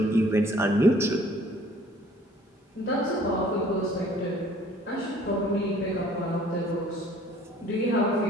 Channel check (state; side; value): normal; both; correlation 0.55